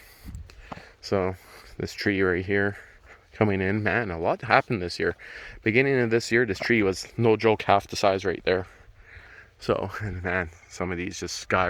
So this tree right here coming in, man, a lot happened this year. Beginning of this year, this tree was, no joke, half the size right there. So, and man, some of these just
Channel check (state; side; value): identical; both; correlation 1.00